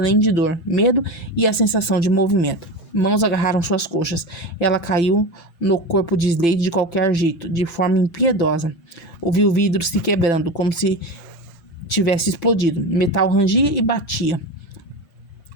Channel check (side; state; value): right; late; 5.9 ms